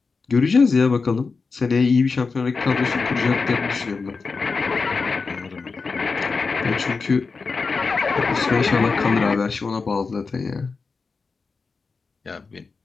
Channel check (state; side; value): quieter; right; 4.5 dB